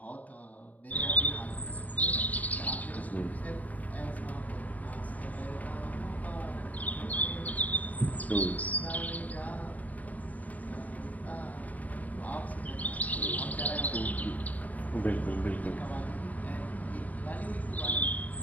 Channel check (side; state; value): right; late; 0.074 ms